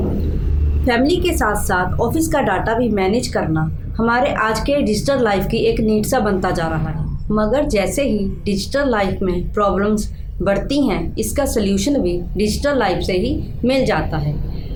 फैमिली के साथ साथ ऑफिस का डाटा भी मैनेज करना हमारे आज के डिजिटल लाइफ की एक नीड सा बनता जा रहा है। मगर जैसे ही डिजिटल लाइफ में प्रॉब्लम्स बढ़ती हैं, इसका सल्यूशन भी डिजिटल लाइफ से ही मिल जाता है।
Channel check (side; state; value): both; identical; correlation 1.00